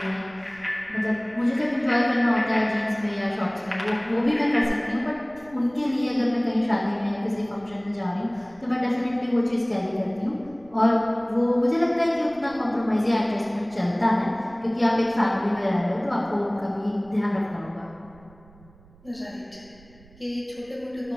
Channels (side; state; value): right; noise; rumble, 26 dB below the sound